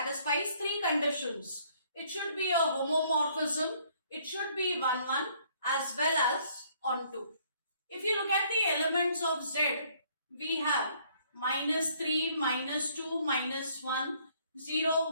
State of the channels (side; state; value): both; inverted; correlation -0.63